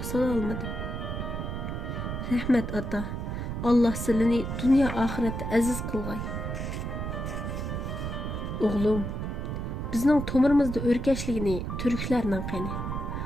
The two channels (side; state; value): right; noise; rumble, 4 dB below the sound